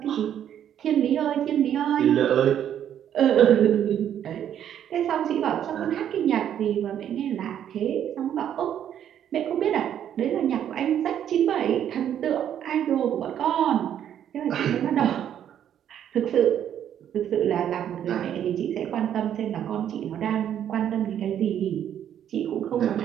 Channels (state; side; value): quieter; left; 9.9 dB